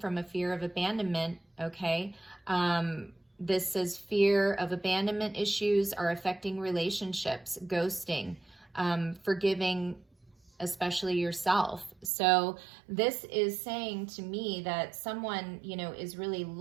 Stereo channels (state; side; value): drops out; left; at 12.1 s